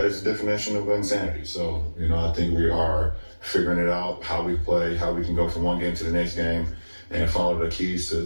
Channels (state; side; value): inverted; both; correlation -1.00